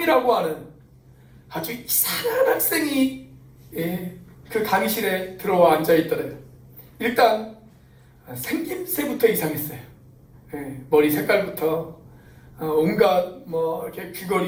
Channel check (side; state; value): both; identical; correlation 1.00